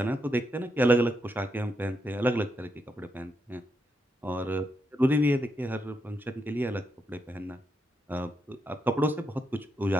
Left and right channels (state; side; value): normal; both; correlation 0.82